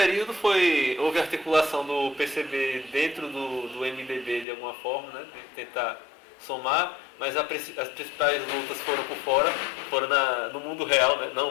houve articulação do PCB dentro do MDB de alguma forma, né, de tentar somar, mas as principais lutas foram por fora, foram no mundo real, né,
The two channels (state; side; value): drops out; right; at 4.5 s